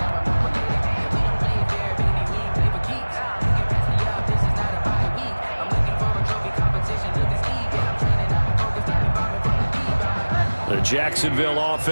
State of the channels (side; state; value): both; inverted; correlation -1.00